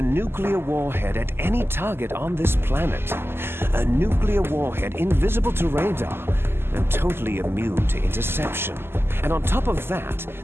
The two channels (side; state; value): left; late; 0.11 ms